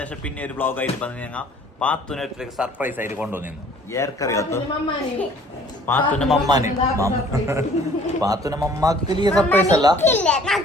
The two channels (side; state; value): both; normal; correlation 0.54